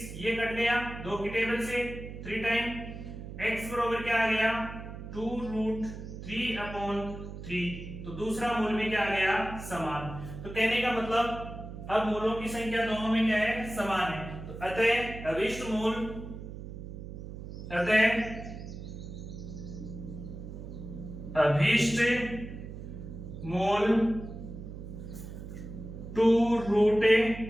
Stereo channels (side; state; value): right; noise; hum, 10 dB below the sound